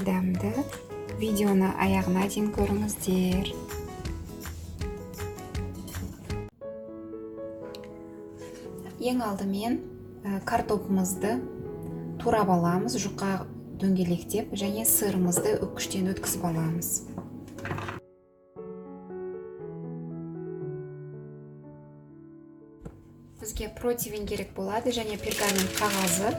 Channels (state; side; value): identical; both; correlation 1.00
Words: дәмді. Видеоны аяғына дейін көріңіздер. Ең алдымен картопымызды турап аламыз, жұқа дөңгелектеп, және сырымызды үккіштен өткізіп аламыз. Бізге противень керек болады, және пергамент қағазы